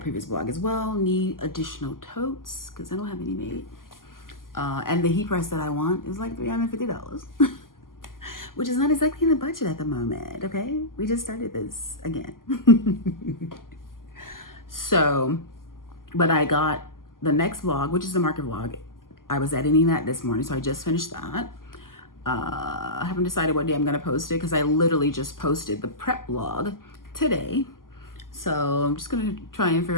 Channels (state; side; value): late; right; 0.91 ms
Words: blog as well, need additional totes because I don't have any made. And the heat press that I want is like $350, which is not exactly in the budget at the moment, okay? We just started this again. So, but I got the next vlog, which is the market vlog. I was editing that this morning, so I just finished that. I haven't decided what day I'm gonna post it because I literally just posted the prep vlog today. So I'm just gonna try and